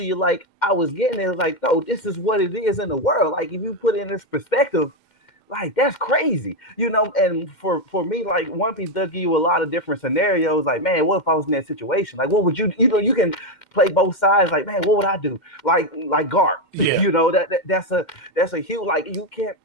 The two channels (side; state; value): right; late; 2.1 ms